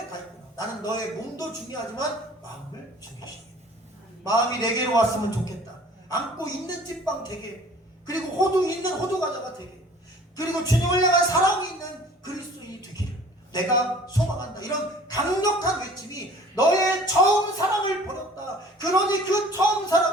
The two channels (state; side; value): normal; both; correlation 0.49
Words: 가 있구나. 나는 너의 몸도 중요하지만 마음을 중요시해. 마음이 내게로 왔으면 좋겠다. 안고 있는 찐빵 되게, 그리고 호두 있는 호두 과자가 되게, 그리고 주님을 향한 사랑이 있는 그리스도인이 되기를 내가 소망한다. 이런 강력한 외침이 너의 처음 사랑을 버렸다. 그러니 그 처음